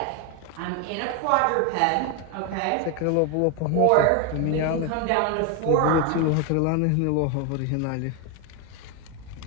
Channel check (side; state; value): both; different; correlation 0.01